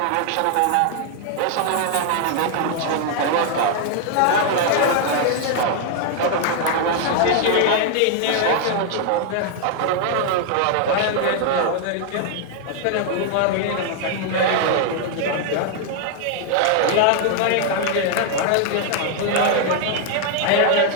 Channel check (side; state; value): both; different; correlation 0.00